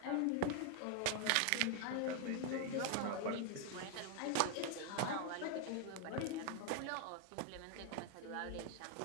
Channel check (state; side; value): different; both; correlation 0.00